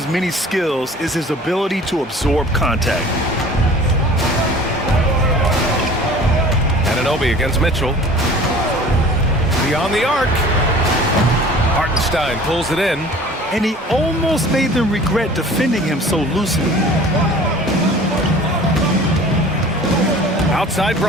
many skills is his ability to absorb contact. Anunoby against Mitchell. Beyond the arc. Hartenstein pulls it in. And he almost made them regret defending him so loosely. Outside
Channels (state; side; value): normal; both; correlation 0.46